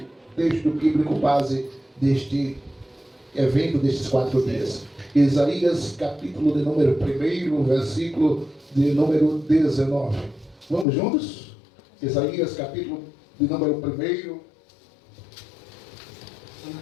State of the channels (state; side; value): drops out; right; at 10.9 s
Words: texto bíblico base deste evento, destes 4 dias. Isaías, capítulo de número 1, versículo de número 19. Vamos juntos? Isaías, capítulo de número 1,